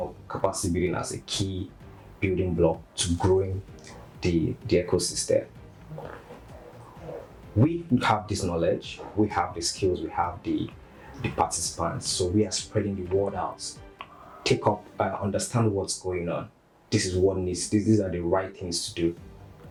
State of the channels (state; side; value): identical; both; correlation 1.00